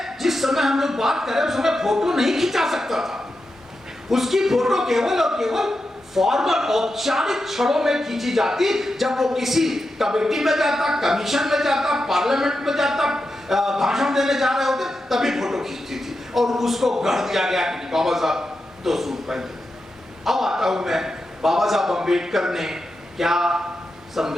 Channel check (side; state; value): both; normal; correlation 0.89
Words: जिस समय हम लोग बात करें उस समय फोटो नहीं खिंचा सकता था। उसकी फोटो केवल और केवल फॉर्मल औपचारिक क्षणों में खींची जाती, जब वो किसी कमेटी में जाता, कमीशन में जाता, पार्लियामेंट में जाता, भाषण देने जा रहे होते, तभी फोटो खींचती थी और उसको गढ़ दिया गया कि बाबा साहब तो सूट पहनते। अब आता हूं मैं, बाबा साहब अंबेडकर ने क्या